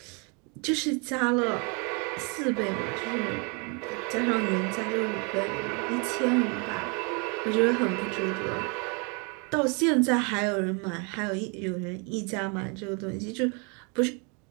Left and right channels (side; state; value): left; quieter; 33.6 dB